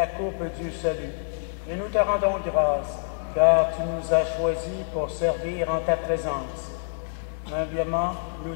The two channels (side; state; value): right; silent; 59 dB below the other